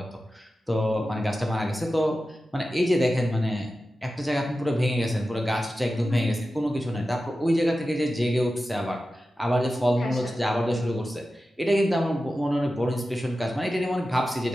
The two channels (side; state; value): both; normal; correlation 0.93